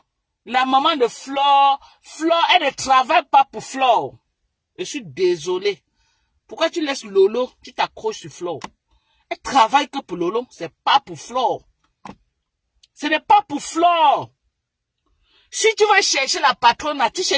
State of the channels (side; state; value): both; identical; correlation 1.00